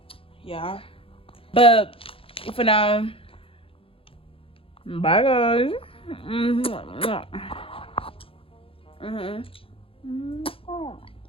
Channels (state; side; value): late; right; 0.27 ms